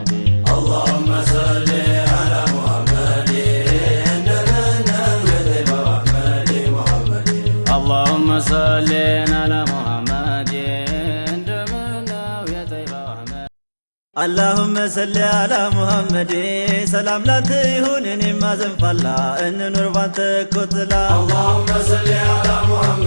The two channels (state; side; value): inverted; both; correlation -1.00